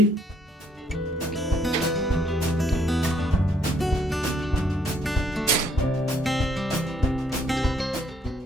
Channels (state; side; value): normal; both; correlation 0.68